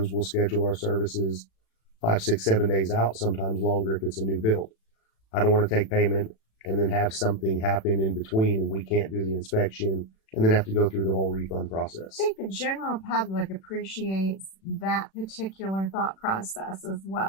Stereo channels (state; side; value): late; right; 36 ms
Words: will schedule our services 5, 6, 7 days out, sometimes longer if it's a new build. I don't want to take payment and then have something happen in between and we can't do the inspection and then have to go through the whole refund process. I think the general public appreciates that particular thought process as